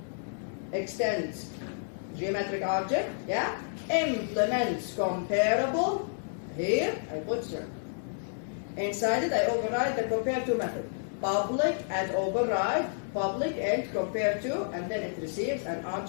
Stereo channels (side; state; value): right; silent; digital silence